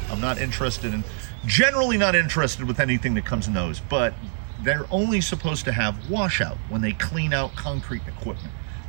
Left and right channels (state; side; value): silent; left; 58 dB below the other